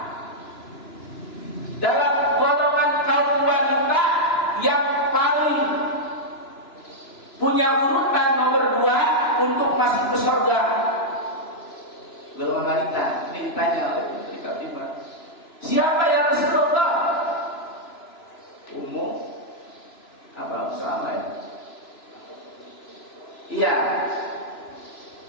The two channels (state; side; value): late; right; 2.9 ms